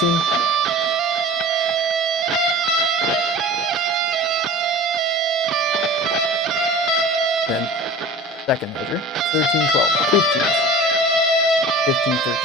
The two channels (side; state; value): both; normal; correlation 0.39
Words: Then second measure, 13, 12, 15. 15, 13,